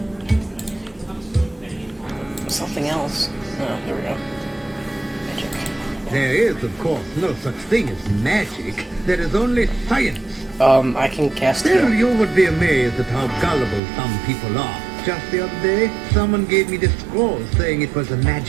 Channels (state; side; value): drops out; left; at 13.8 s